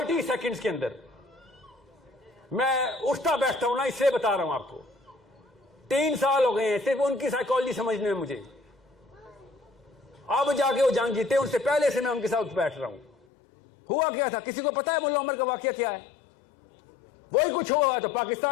سیکنڈز کے اندر. میں اٹھتا بیٹھتا ہوں نا، اس سے بتا رہا ہوں آپ کو. 3 سال ہو گئے ہیں صرف ان کی سائیکالوجی سمجھنے میں. مجھے اب جا کے وہ جنگ جیتے، ان سے پہلے سے میں ان کے ساتھ بیٹھ رہا ہوں. ہوا کیا تھا کسی کو پتا ہے؟ ملا عمر کا واقعہ کیا ہے؟ وہی کچھ ہوا تو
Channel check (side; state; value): right; drops out; at 13.1 s